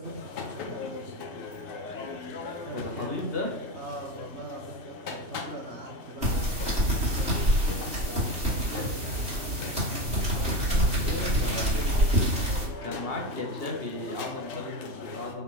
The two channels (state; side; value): late; left; 3.0 ms